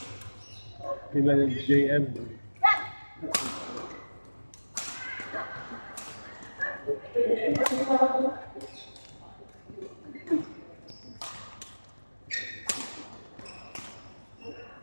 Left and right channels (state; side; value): inverted; both; correlation -1.00